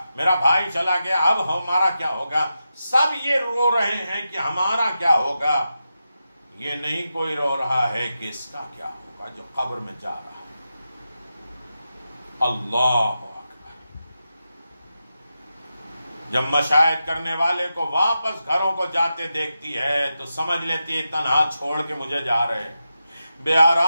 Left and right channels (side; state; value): both; inverted; correlation -0.89